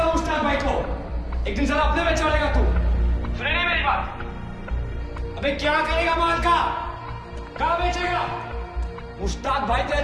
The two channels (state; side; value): identical; both; correlation 1.00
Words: मुश्ताक भाई को, एक दिन साला अपने में चलेगा तू। सुने नहीं मेरी बात? अबे क्या करेगा माल का? कहाँ बेचेगा? मुश्ताक भाई तेरा